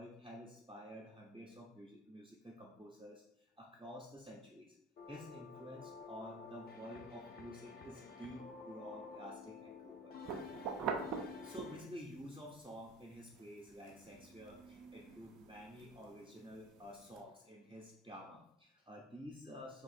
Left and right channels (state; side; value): normal; both; correlation 0.39